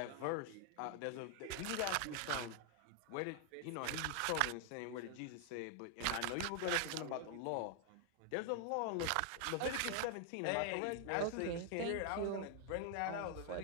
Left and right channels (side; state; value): both; different; correlation 0.00